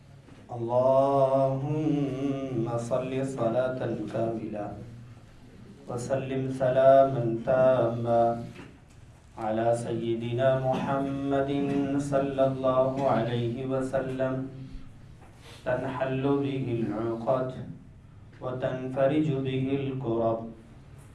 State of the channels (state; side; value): identical; both; correlation 1.00